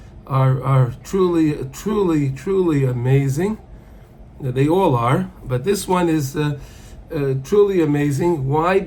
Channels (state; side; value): identical; both; correlation 1.00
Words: are truly amazing. They all are, but this one is truly amazing. Why?